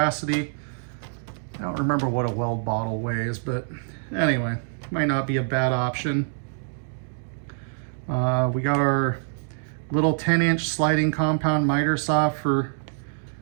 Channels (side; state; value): left; silent; digital silence